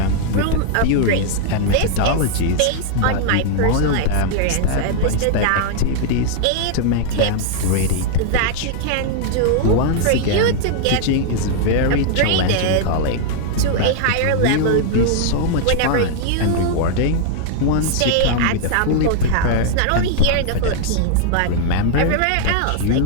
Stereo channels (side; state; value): both; different; correlation 0.00